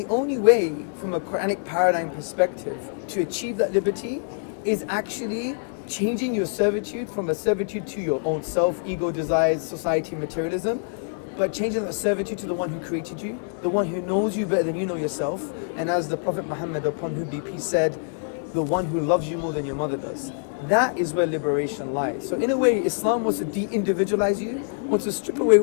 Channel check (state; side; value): silent; right; digital silence